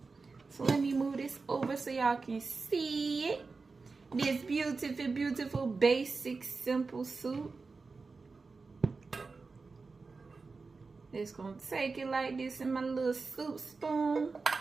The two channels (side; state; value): left; quieter; 4.2 dB